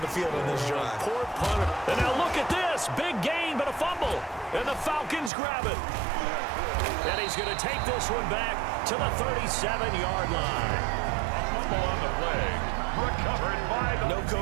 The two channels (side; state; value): left; drops out; at 5.3 s